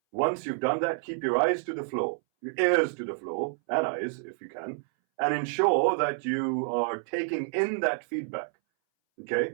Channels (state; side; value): silent; left; 59 dB below the other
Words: Once you've done that, keep your eyes to the floor, your ears to the floor, and eyes if you can, and ensure that you are taking in that feedback,